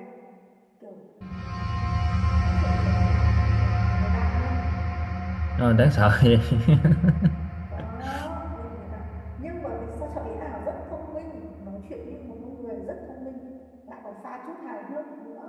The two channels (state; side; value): identical; both; correlation 1.00